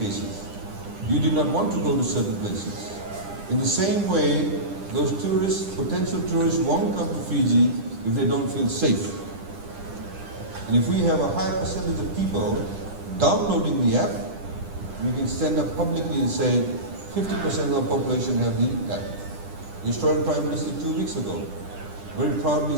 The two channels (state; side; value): late; left; 10 ms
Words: You did not want to go to certain places. In the same way, those tourists, potential tourists, won't come to Fiji if they don't feel safe. And if we have a high percentage of people downloading the app, we can stand up publicly and say 50% of the population have the app. The Australian Prime Minister 2 weeks ago very proudly